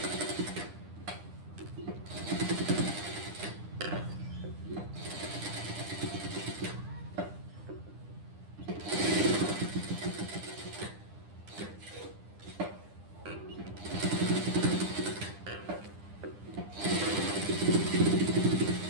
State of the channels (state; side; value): late; left; 9.9 ms